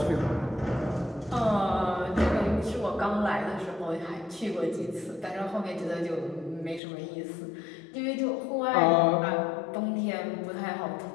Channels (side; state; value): right; drops out; at 6.8 s